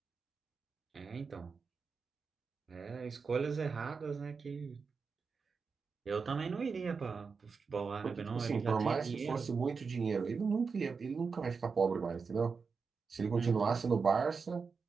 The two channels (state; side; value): quieter; left; 5.1 dB